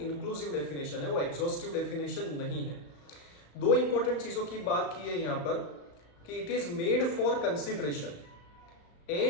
डेफिनेशन है, वो एग्जॉस्टिव डेफिनेशन नहीं है। 2 इंपॉर्टेंट चीजों की बात की है यहाँ पर कि it is made for consideration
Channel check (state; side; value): late; right; 35 ms